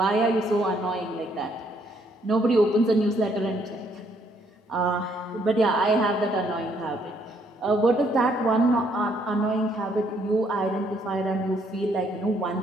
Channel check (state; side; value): normal; both; correlation 0.69